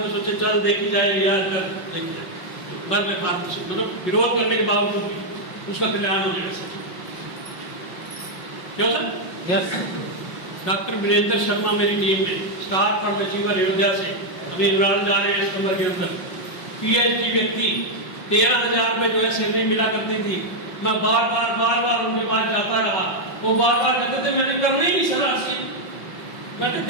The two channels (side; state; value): right; late; 5.5 ms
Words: को सोचे चल देखी जाए यार, कर देखी जाए, बस मैं मतलब विरोध करने के बावजूद उसका कल्याण हो जाएगा सर। क्यों sir? Yes. Doctor Virendra Sharma मेरी टीम में, स्टार फंड अचीवर अयोध्या से, अभी इमरान जा रहे हैं इस कमर के अंदर। पीएचडी व्यक्ति, 13,000 रुपये जो है सैलरी मिला करती थी। मैं बार बार उनके पास जाता रहा, वो बार कहते थे मैंने करना ही नहीं सर आज से, मैंने